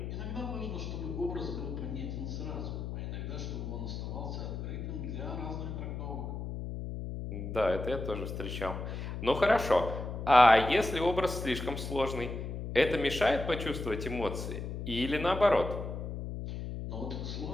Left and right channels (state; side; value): noise; left; hum, 5 dB below the sound